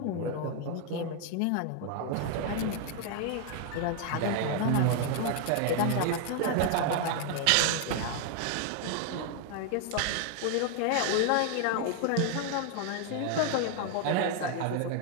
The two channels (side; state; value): both; different; correlation 0.00